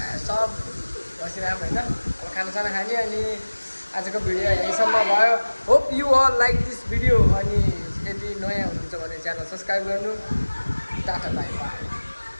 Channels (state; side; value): inverted; both; correlation -1.00